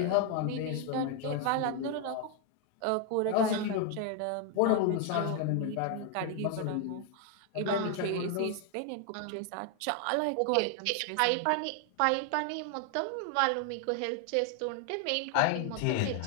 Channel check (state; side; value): different; both; correlation 0.01